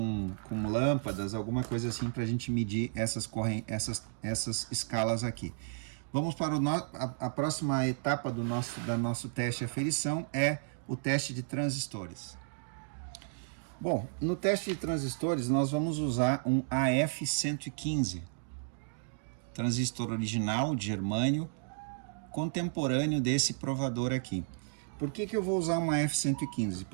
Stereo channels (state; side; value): silent; left; digital silence